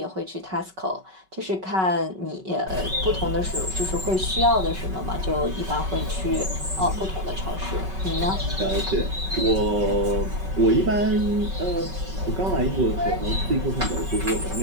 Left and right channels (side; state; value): left; late; 5.3 ms